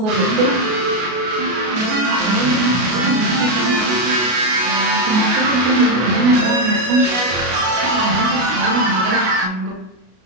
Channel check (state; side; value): late; left; 33 ms